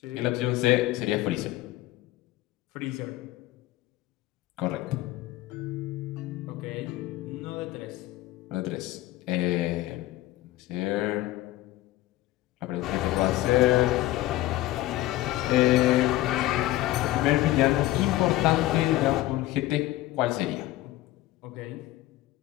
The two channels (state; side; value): quieter; right; 16.1 dB